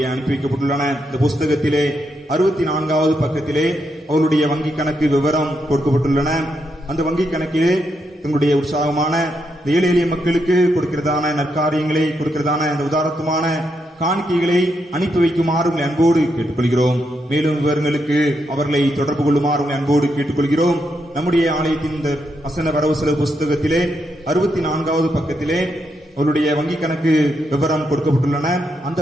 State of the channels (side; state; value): both; normal; correlation 0.81